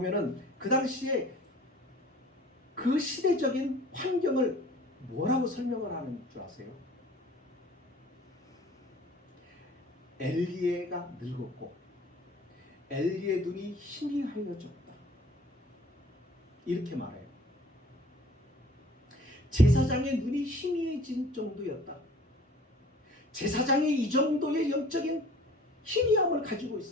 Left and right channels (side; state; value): both; normal; correlation 0.48